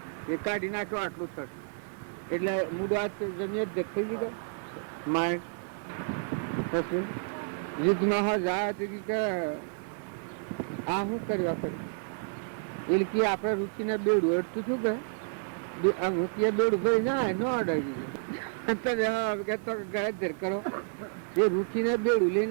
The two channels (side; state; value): left; silent; digital silence